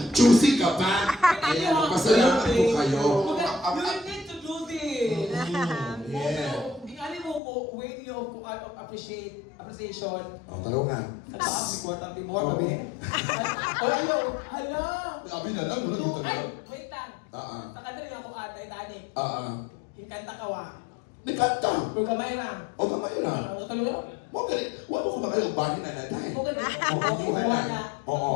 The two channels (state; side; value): drops out; right; at 7.4 s